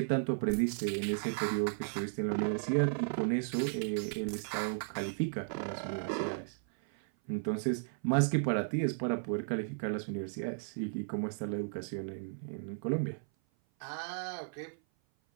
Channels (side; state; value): left; silent; 55 dB below the other